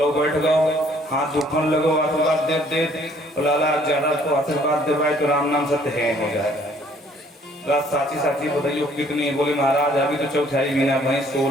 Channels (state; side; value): normal; both; correlation 0.60